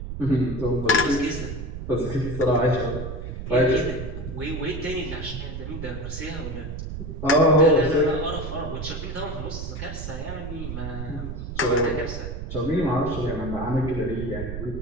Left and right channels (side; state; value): right; noise; rumble, 7 dB below the sound